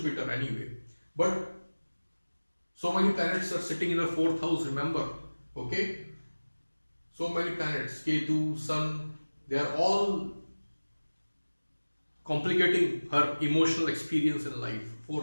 anyway. But so many planets are sitting in the 4th house, remember, okay? So many planets, Ketu, Sun, they are all complicating her emotional experience in life.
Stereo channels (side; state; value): both; inverted; correlation -1.00